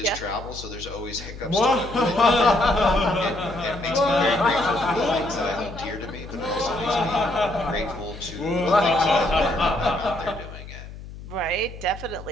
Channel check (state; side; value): noise; left; hum, 14 dB below the sound